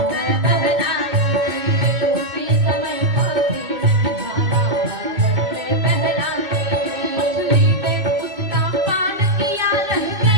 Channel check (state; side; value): late; left; 2.6 ms